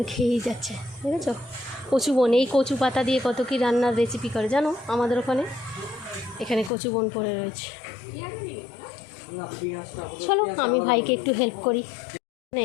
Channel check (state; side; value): drops out; right; at 6.7 s